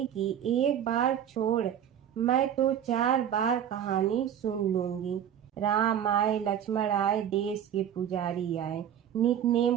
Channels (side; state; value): left; quieter; 9.5 dB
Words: कि एक बार छोड़, मैं तो 4 बार कहानी सुन लूंगी। राम आए लक्ष्मण आए, देश के पुजारी आए, नित